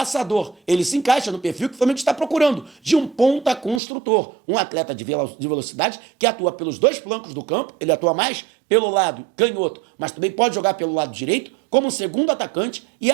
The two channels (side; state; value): left; drops out; at 3.8 s